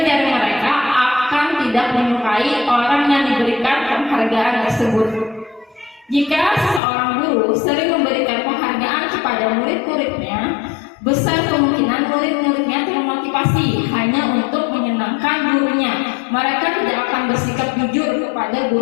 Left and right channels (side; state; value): right; drops out; at 6.8 s